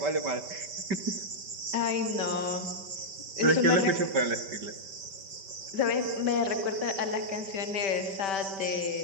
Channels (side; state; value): left; late; 5.1 ms